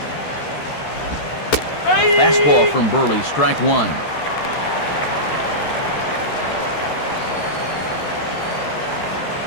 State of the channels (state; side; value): late; right; 13 ms